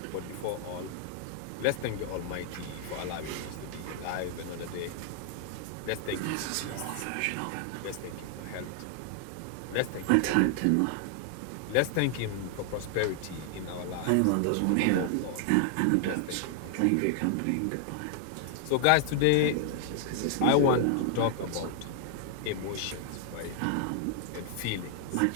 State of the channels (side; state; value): both; different; correlation 0.00